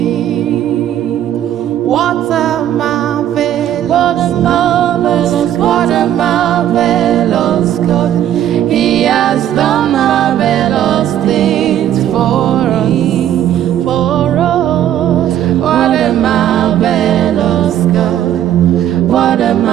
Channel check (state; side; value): quieter; left; 11.2 dB